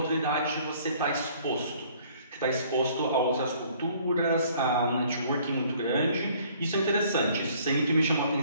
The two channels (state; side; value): inverted; both; correlation -0.58